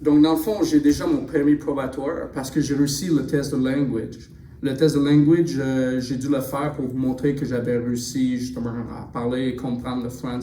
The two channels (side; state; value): both; identical; correlation 1.00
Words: Donc, dans le fond, j'ai déjà mon permis probatoire parce que j'ai réussi le test de language. Le test de language, j'ai dû le faire pour vous montrer que j'avais réussi justement à parler et comprendre le